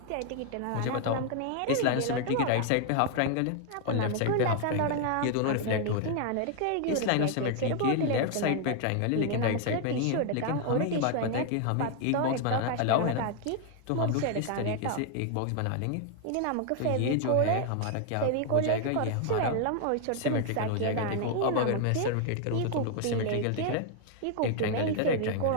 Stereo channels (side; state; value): both; different; correlation 0.00